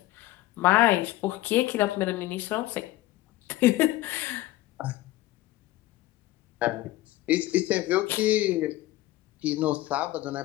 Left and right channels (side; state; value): right; quieter; 16.8 dB